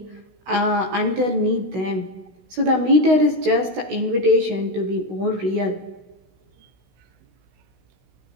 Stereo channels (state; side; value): late; left; 16 ms